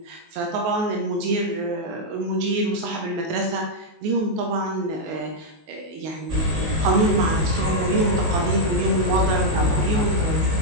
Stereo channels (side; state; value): left; late; 19 ms